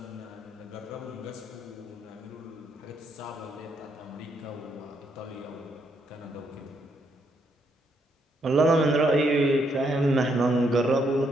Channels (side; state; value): both; normal; correlation 0.75